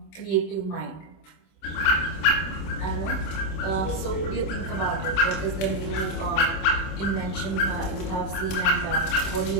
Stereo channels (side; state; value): right; late; 26 ms